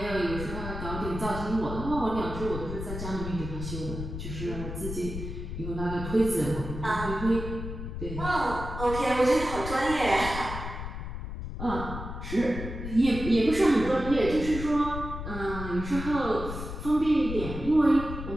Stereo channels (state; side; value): noise; left; rumble, 7 dB below the sound